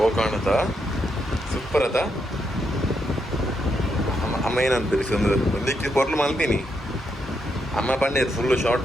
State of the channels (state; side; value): normal; both; correlation 0.80